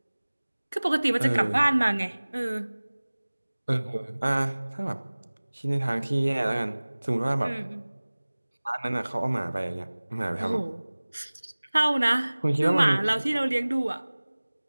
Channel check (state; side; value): inverted; both; correlation -1.00